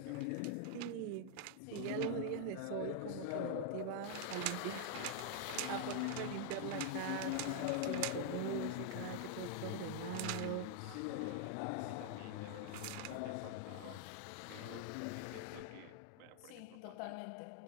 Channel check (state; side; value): different; both; correlation 0.00